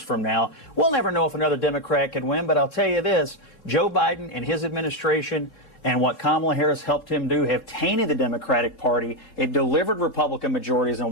from now. We'll never know if another Democrat could win, but I'll tell you this, Joe Biden and his administration and what Kamala Harris helped him do have tainted the Democratic Party. It delivered Republican majorities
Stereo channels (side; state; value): right; late; 3.7 ms